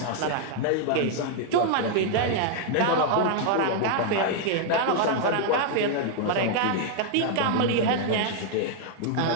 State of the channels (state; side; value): different; both; correlation 0.00